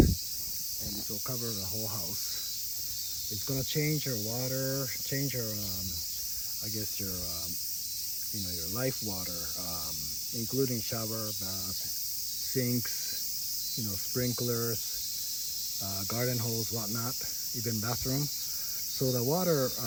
it will cover the whole house. It's gonna change your water, change your, I guess your, your life water, including shower, bath, sinks, sprinklers, garden hose, whatnot, even bathroom. So the water,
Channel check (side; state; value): both; identical; correlation 1.00